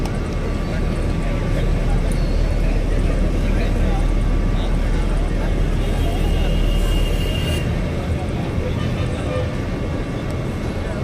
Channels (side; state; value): both; identical; correlation 1.00